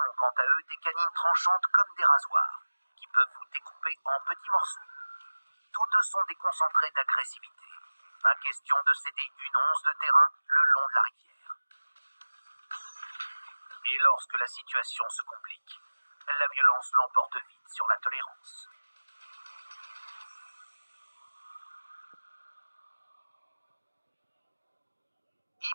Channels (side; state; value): both; inverted; correlation -1.00